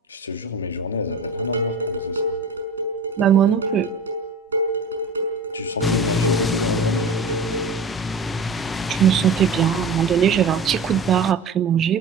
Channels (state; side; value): quieter; left; 3.7 dB